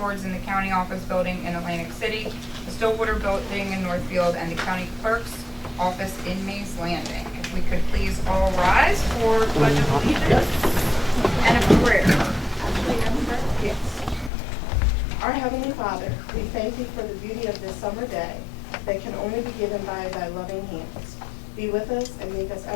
in the County Office Building in Atlantic City, the Stillwater Building in Northfield, and the County Clerk's Office in Mays Landing. If we could please all rise for Pledge of Allegiance and a prayer. Yes. Our Heavenly Father, we thank you for the beauty of this summer day that can only be given by thy loving hands. Be with us and make us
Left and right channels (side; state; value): right; drops out; at 14.3 s